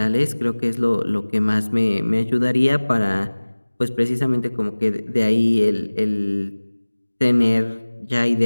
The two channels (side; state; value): both; inverted; correlation -1.00